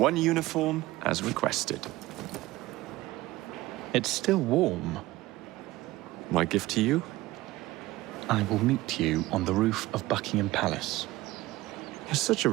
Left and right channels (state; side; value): quieter; left; 18.2 dB